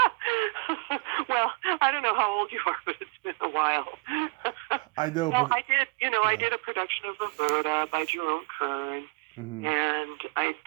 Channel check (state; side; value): quieter; left; 30.8 dB